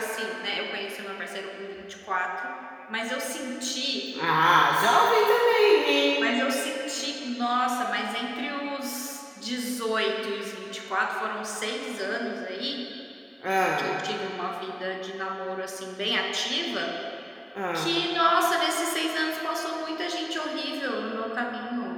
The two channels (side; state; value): both; identical; correlation 1.00